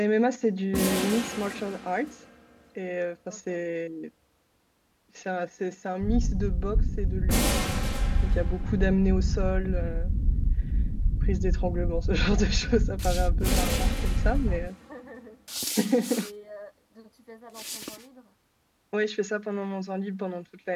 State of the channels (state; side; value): identical; both; correlation 1.00